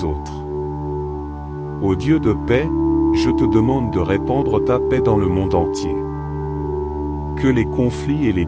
autres. Ô Dieu de paix, je te demande de répandre ta paix dans le monde entier. Que les conflits et les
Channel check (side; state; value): both; identical; correlation 1.00